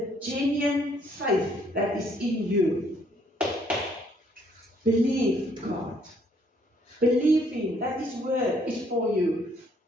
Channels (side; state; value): both; normal; correlation 0.66